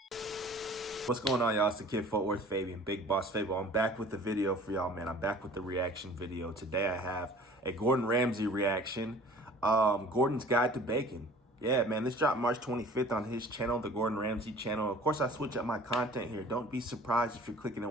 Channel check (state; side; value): normal; both; correlation 0.48